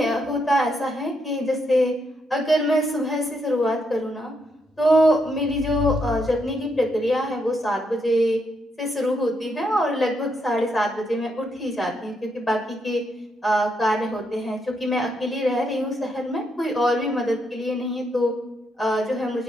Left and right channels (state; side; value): normal; both; correlation 0.79